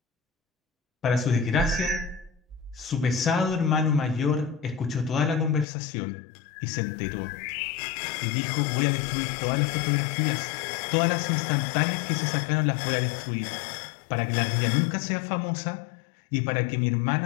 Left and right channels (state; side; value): drops out; right; at 5.7 s